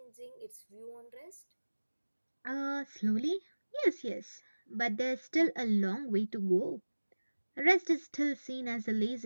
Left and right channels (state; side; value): inverted; both; correlation -1.00